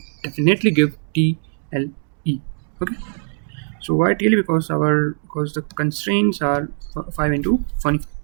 definitely give TLE. Okay. So why TLE? Because the constraints are 5 into 20.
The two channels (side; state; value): left; silent; 65 dB below the other